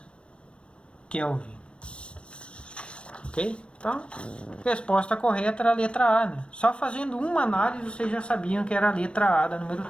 Kelvin. Ok? Então, a resposta correta era a letra A, né? Só fazendo uma análise vocês já sabiam que era a letra A da número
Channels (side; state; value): right; late; 0.058 ms